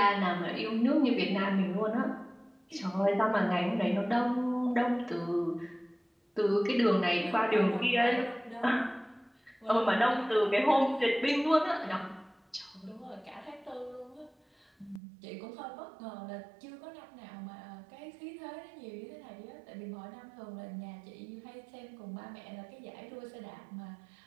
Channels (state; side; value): drops out; left; at 15.0 s